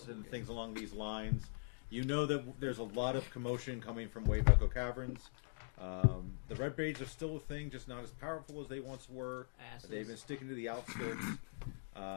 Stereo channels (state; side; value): silent; right; digital silence